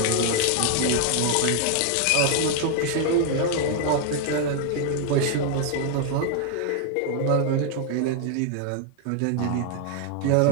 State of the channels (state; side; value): different; both; correlation 0.00